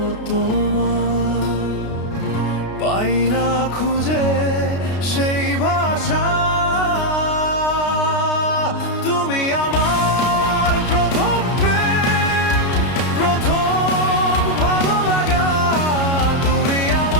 তোমার, পাই না খুঁজে সেই ভাষা। তুমি আমার প্রথম প্রেম, প্রথম ভালো লাগা। তুমি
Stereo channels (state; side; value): late; right; 33 ms